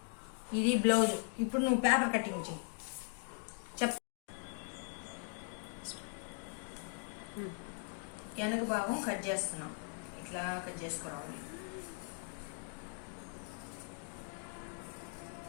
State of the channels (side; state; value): right; silent; 51 dB below the other